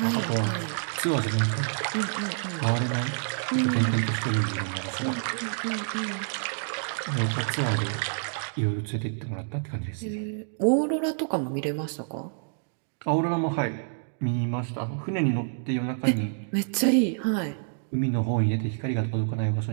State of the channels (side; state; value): left; silent; digital silence